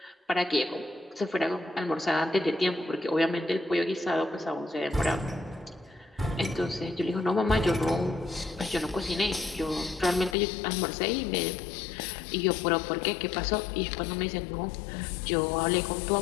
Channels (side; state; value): right; drops out; at 10.4 s